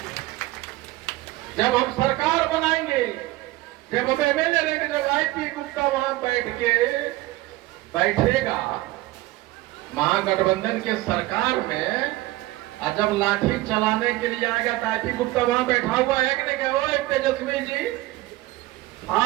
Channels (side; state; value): left; quieter; 18.3 dB